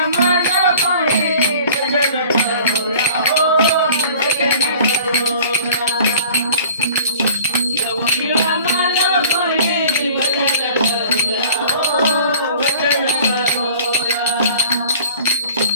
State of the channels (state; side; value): inverted; both; correlation -0.48